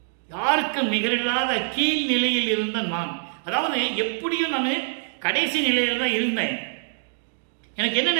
நிகரில்லாத கீழ் நிலையில் இருந்த நான், அதாவது எப்படியும் நான் கடைசி நிலையில் தான் இருந்தேன், எனக்கு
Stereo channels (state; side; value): silent; left; digital silence